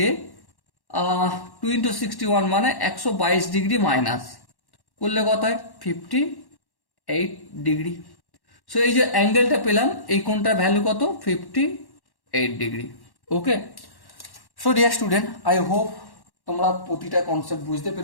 2 × 61 মানে 122 ডিগ্রি মাইনাস করলে কত হয়? 58 ডিগ্রি। সো এই যে অ্যাঙ্গেলটা পেলাম, এই কোণটার ভ্যালু কত? 58 degree. Okay, so dear student, I hope তোমরা প্রতিটা কনসেপ্ট বুঝতে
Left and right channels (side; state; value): right; late; 1.1 ms